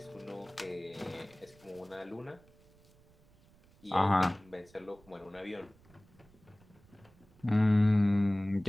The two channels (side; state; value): right; noise; rumble, 28 dB below the sound